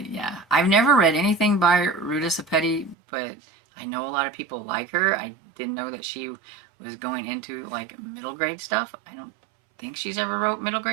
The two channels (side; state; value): left; drops out; at 3.0 s